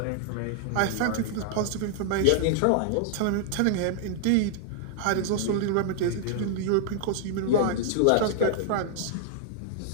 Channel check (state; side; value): different; both; correlation -0.01